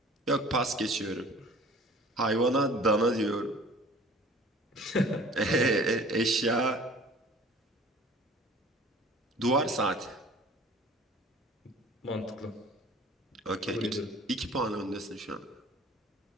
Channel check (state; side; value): normal; both; correlation 0.47